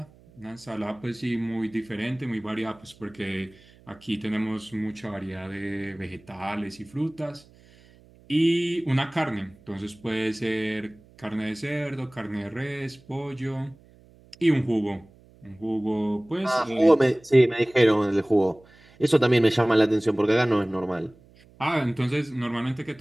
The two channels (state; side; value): noise; right; hum, 27 dB below the sound